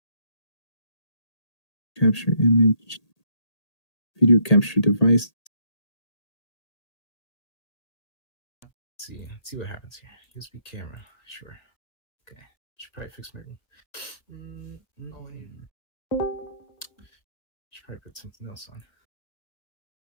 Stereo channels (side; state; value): right; late; 1.8 ms